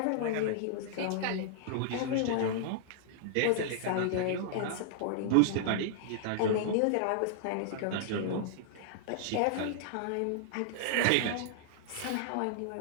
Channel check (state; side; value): different; both; correlation -0.01